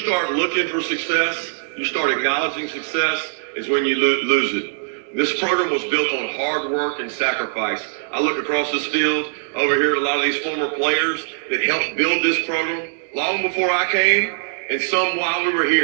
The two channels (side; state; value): left; silent; digital silence